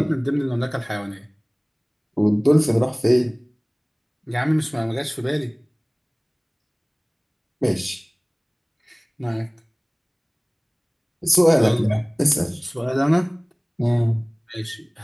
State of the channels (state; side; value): identical; both; correlation 1.00